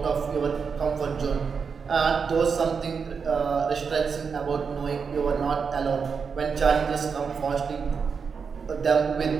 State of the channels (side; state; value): left; quieter; 5.8 dB